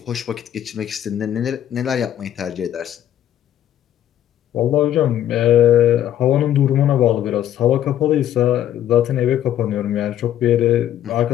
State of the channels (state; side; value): quieter; right; 11.4 dB